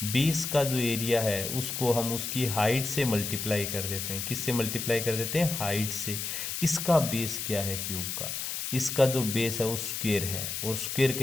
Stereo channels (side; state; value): left; noise; hiss, 4 dB below the sound